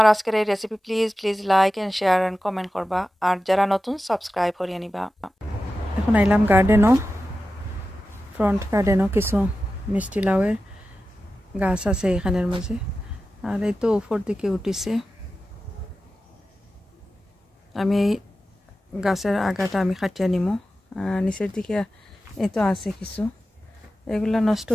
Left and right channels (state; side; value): normal; both; correlation 0.93